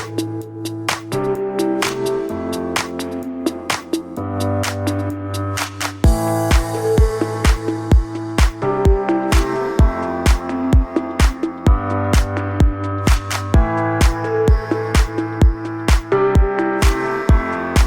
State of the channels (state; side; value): identical; both; correlation 1.00